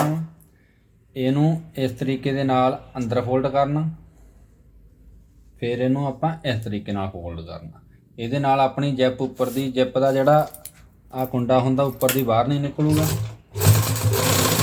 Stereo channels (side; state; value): both; identical; correlation 1.00